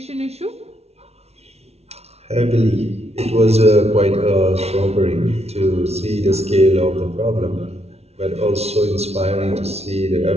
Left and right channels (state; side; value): late; left; 0.31 ms